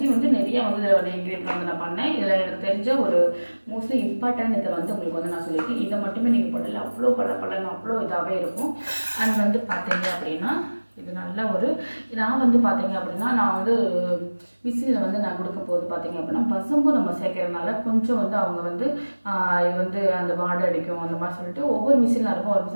நிறைய இதில் இன்க்ரீடியன்ட் நான் பண்ணேன். இதில் எனக்கு தெரிஞ்ச ஒரு மோஸ்ட்லி இம்பார்ட்டன்ட் இதை உங்களுக்கு நான் சொல்லியிருக்கேன். இதை மட்டுமே நீங்கள் போடல, அவ்வளோ பளபளன்னு அவ்வளோ இதாகவே இருக்கும். அண்ட் பார்த்தீங்க அப்படின்னா இது நல்ல ஒரு நான் பார்த்தீங்க அப்படின்னா நான் மிஷினில் நான் கொடுக்கும் போது பார்த்தீங்க அப்படின்னா பசும்பு நம்ம சேர்க்கறதுனால கொஞ்சம் அவங்க இது அந்த வாடை அடிக்கும் அந்த மாதிரி சொல்லிட்டு ஒவ்வொரு மிஷினில் இருக்கும், ஒரு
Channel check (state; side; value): inverted; both; correlation -1.00